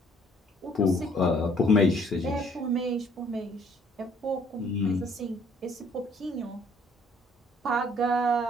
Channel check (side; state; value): both; normal; correlation 0.61